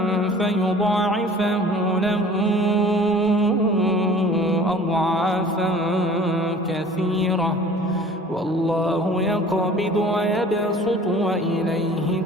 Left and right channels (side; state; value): both; normal; correlation 0.47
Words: فيضاعفه له أضعافا كثيرة والله يقبض ويبسط وإليه